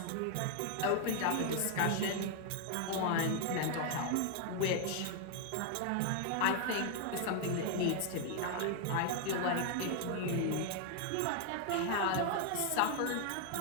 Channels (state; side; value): different; both; correlation 0.00